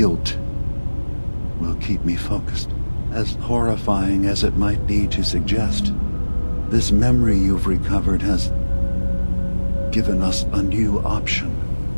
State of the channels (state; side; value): inverted; both; correlation -1.00